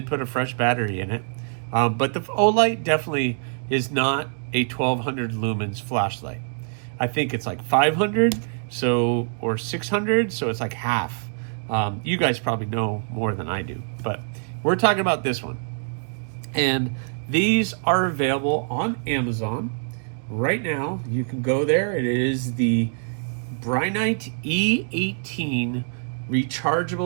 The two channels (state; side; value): silent; left; digital silence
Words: put a fresh battery in it. But the O-Light definitely is not a 1200 lumens flashlight. I think it's like 500, so, or 600, so it's like half. You guys probably know more than I do, but we're talking about this one. And these are available on Amazon right now. You can go there. It is the Brinyte E18